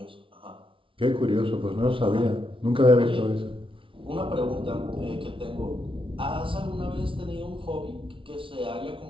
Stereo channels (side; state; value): left; late; 0.25 ms